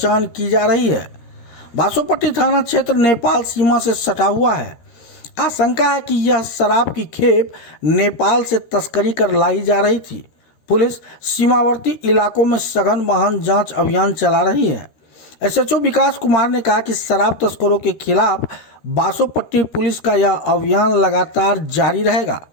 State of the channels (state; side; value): late; right; 13 ms